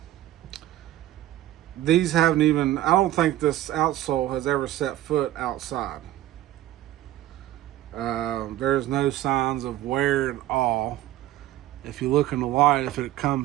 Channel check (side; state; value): left; quieter; 14.3 dB